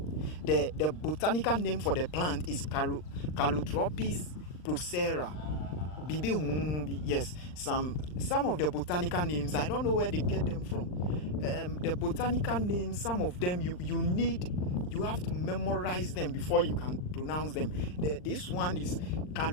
The botanical name for the plant is Calotropis procera. Yes, some of the botanical names, I don't know where they get them from. The botanical names, some of them you have to memorize them before you can pronounce them. This one is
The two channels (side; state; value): right; late; 39 ms